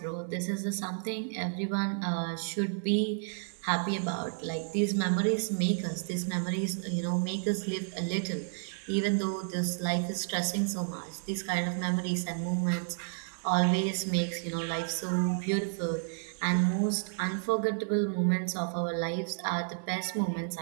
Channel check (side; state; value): left; silent; digital silence